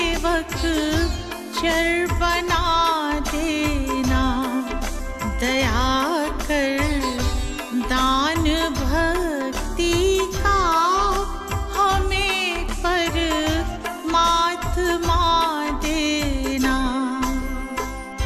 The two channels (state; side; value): identical; both; correlation 1.00